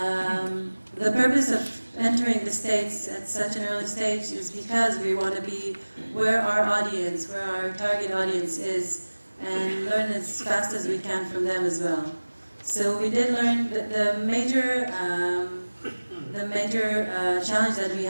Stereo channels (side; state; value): both; inverted; correlation -1.00